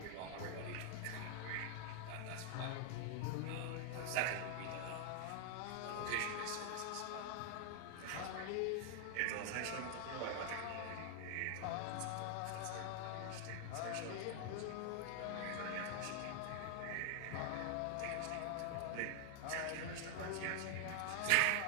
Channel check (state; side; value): different; both; correlation 0.00